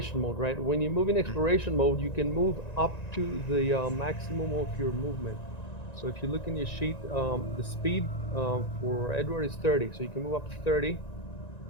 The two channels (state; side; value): late; right; 1.9 ms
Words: mode, right? When you move in exploration mode, you can move up to the maximum of your movement. So if you look in your sheet, the speed for Edward is 30, so you can move up to 30.